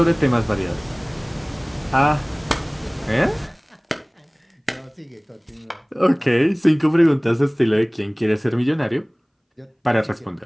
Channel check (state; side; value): identical; both; correlation 1.00